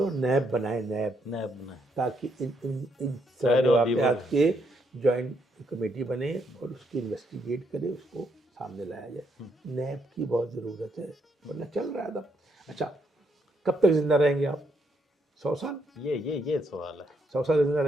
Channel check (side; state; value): both; normal; correlation 0.75